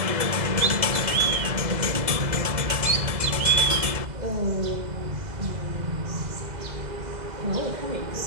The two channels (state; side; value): late; left; 2.0 ms